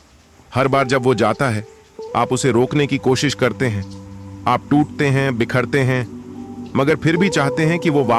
हर बार जब वो जाता है, आप उसे रोकने की कोशिश करते हैं। आप टूटते हैं, बिखरते हैं, मगर फिर भी चाहते हैं कि वो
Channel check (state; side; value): identical; both; correlation 1.00